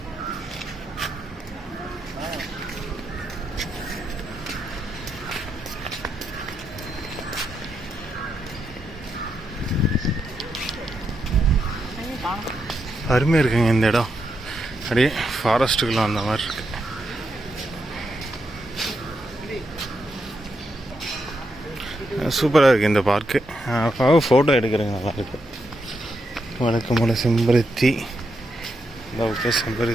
அருமையாக இருக்குங்க இந்த இடம். அப்படியே ஃபாரஸ்ட்டுக்குள்ள அந்த மாதிரி இருக்கு. சூப்பராக இருக்குது இந்த பார்க்கு. ஃபோட்டோ எடுக்கிறேங்க நல்லா இருக்கு. வழக்கமான செம்பருத்தி, ஓகே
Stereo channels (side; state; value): both; normal; correlation 0.83